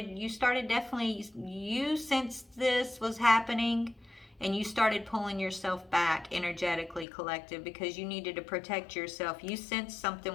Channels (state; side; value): drops out; right; at 7.1 s